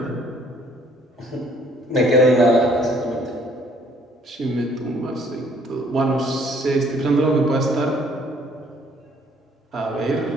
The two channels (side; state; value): both; normal; correlation 0.61